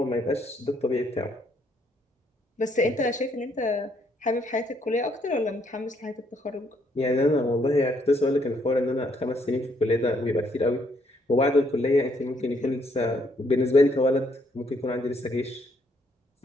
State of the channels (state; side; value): normal; both; correlation 0.70